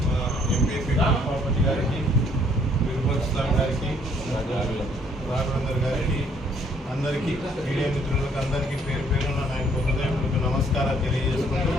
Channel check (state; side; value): normal; both; correlation 0.64